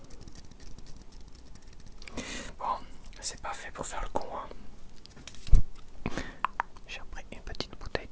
Bon, c'est pas fait pour faire le con, hein. J'ai repris une petite bouteille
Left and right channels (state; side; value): identical; both; correlation 1.00